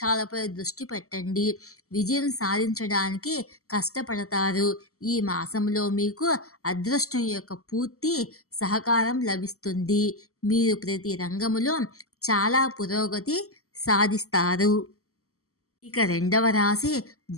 దృష్టి పెట్టండి. విజయం సాధించడానికి కష్టపడతారు. ఈ మాసంలో మీకు అదృష్టం యొక్క పూర్తి సహకారం లభిస్తుంది. మీరు ప్రతి రంగంలో చాలా పురోగతి సాధిస్తారు. ఇక రెండవ రాశి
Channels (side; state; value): right; late; 0.64 ms